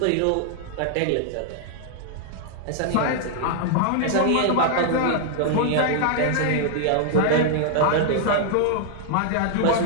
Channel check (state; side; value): different; both; correlation -0.01